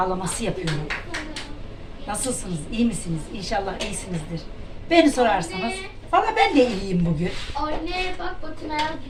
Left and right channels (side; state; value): both; identical; correlation 1.00